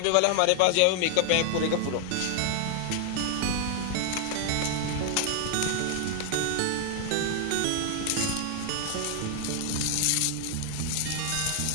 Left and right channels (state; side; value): different; both; correlation 0.00